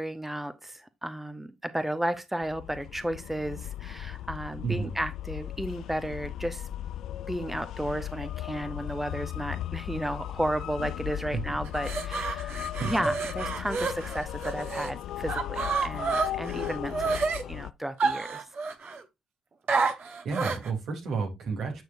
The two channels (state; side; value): normal; both; correlation 0.81